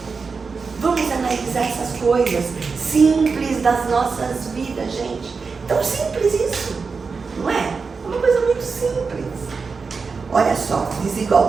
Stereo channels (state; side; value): quieter; left; 4.9 dB